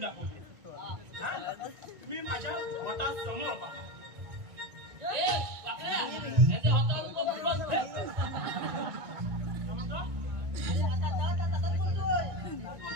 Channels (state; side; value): late; left; 1.9 ms